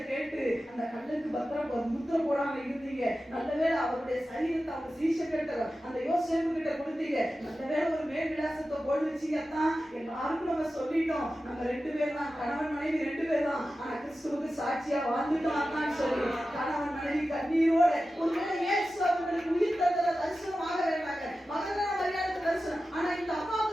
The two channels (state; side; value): normal; both; correlation 0.93